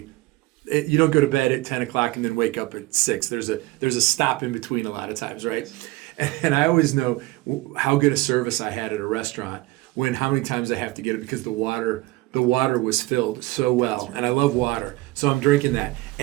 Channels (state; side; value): quieter; left; 20.1 dB